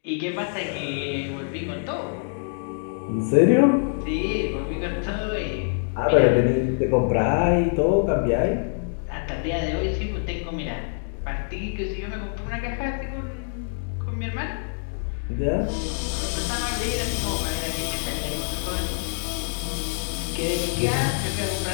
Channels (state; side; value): silent; right; digital silence